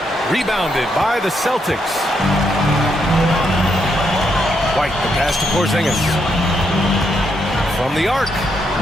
Rebounded by the Celtics. White, the pass to Porzingis. From the arc.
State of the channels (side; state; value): both; normal; correlation 0.78